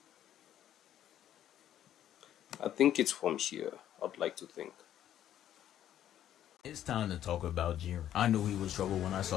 I think it's from here. I'd like to think. It's time to talk about Jiren. I knew he was trouble when I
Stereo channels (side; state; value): right; quieter; 11.3 dB